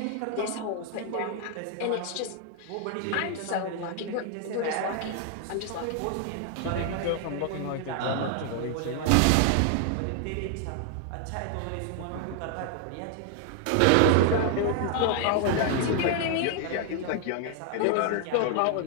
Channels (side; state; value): both; different; correlation 0.00